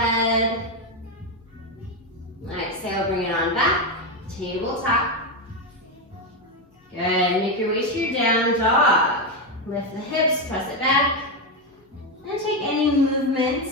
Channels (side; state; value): both; normal; correlation 0.09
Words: Exhale, bring it on back. Tabletop. Good, make your way to your down dog. Lift the hips, press it back. And take any